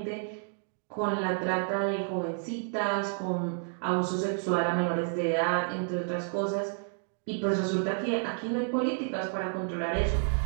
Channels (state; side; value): silent; left; 58 dB below the other